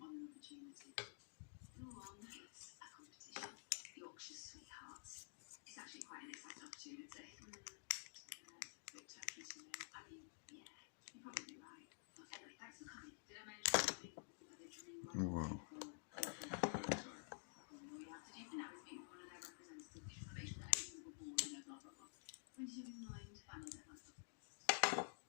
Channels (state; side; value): silent; right; digital silence